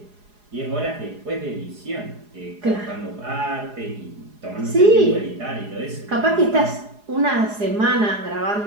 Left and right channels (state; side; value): late; left; 4.8 ms